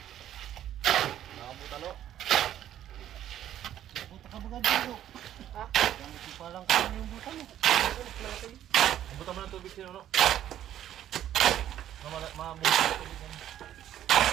Buta mo ng tubig sino no? Mabuti ng tubig yan.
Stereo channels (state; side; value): quieter; left; 11.5 dB